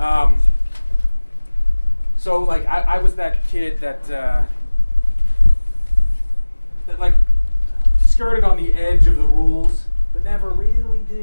So, like, I was that kid that like skirted on the edge of the rules, but never really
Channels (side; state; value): both; inverted; correlation -1.00